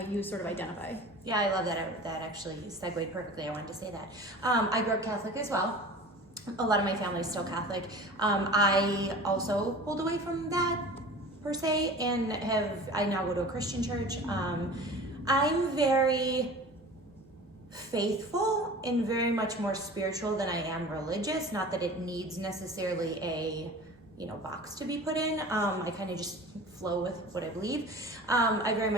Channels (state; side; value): normal; both; correlation 0.39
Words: sort of identify? Yeah, I love that. That actually segued perfectly. I wanted to say that. I grew up Catholic as well. A lot of my family is still Catholic. I also pulled away from that per se, and I now go to a Christian church. I'm very faithful and very much more spiritual than I am religious. Not that it needs necessarily a box to be put in. I kind of just flow with what I believe. I very